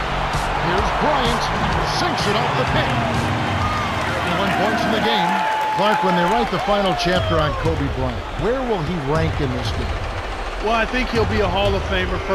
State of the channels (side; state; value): both; identical; correlation 1.00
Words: Here's Bryant, sinks it off the pick. 1 point in the game. Clark, when they write the final chapter on Kobe Bryant, where will he rank in this game? Well, I think he'll be a Hall of Famer,